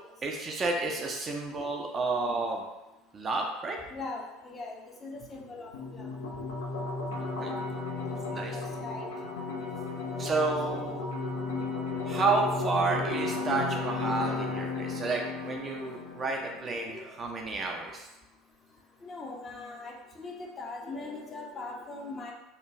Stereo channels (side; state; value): both; normal; correlation 0.53